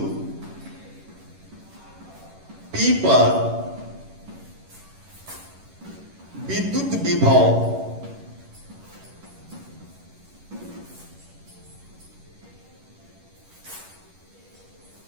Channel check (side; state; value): left; late; 11 ms